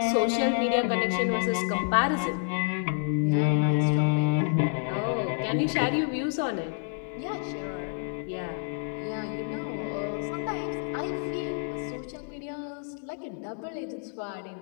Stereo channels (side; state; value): right; silent; 58 dB below the other